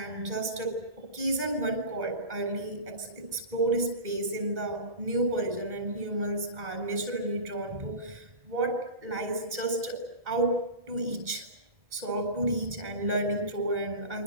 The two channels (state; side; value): late; left; 2.0 ms